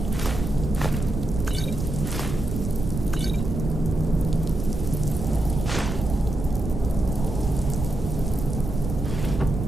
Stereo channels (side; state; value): right; noise; rumble, 4 dB below the sound